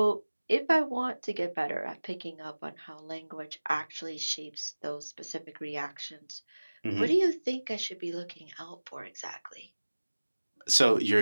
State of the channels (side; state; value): both; inverted; correlation -1.00